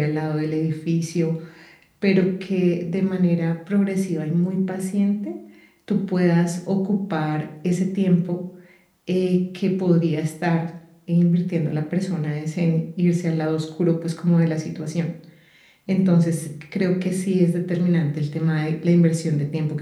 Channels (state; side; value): identical; both; correlation 1.00